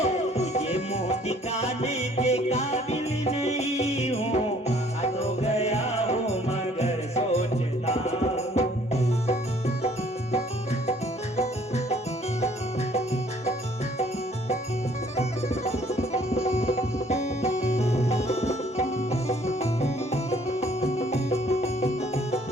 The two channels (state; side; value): normal; both; correlation 0.59